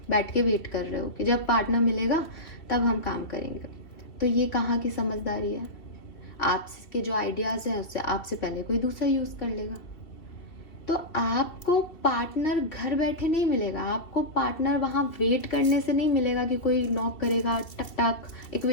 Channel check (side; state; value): right; late; 2.8 ms